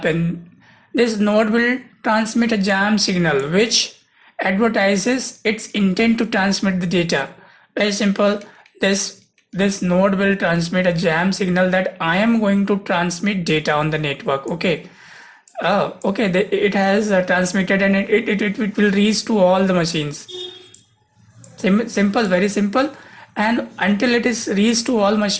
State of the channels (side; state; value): both; identical; correlation 1.00